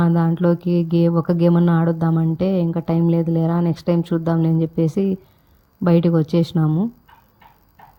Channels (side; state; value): both; identical; correlation 1.00